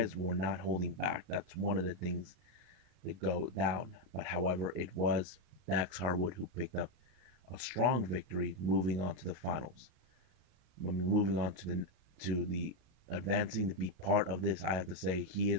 were not holding back. That's one of the things that go down. But however, it was Dax Harwood who picked up a strong victory, moving on to the finals. I mean, moving on to the advancing to be part of this. I have to say he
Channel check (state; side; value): late; left; 33 ms